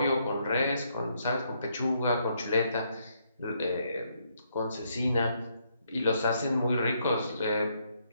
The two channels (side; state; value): both; inverted; correlation -0.74